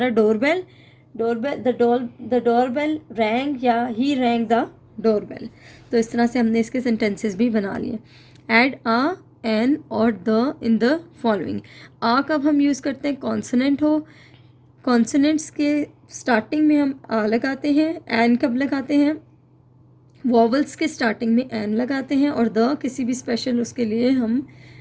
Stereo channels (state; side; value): identical; both; correlation 1.00